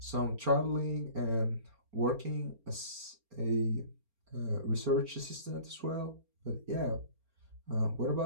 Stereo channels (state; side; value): late; left; 4.3 ms